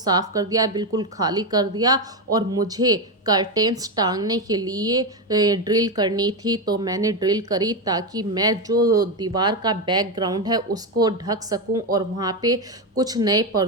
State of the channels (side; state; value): both; normal; correlation 0.10